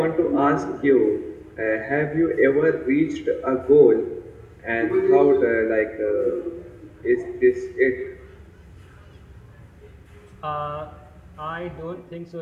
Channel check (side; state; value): both; identical; correlation 1.00